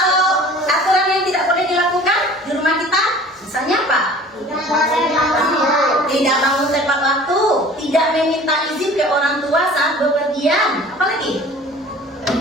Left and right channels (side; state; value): both; normal; correlation 0.46